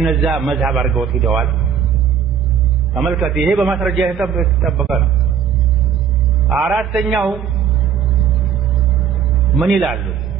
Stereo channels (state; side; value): quieter; left; 8.0 dB